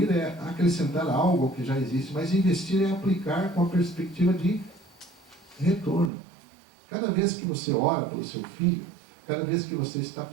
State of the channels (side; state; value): left; drops out; at 6.1 s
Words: é acrescentar algo ao que já existe, mas investir é aplicar com a perspectiva de retorno. Cada vez que você ora pelo seu filho, cada vez que você está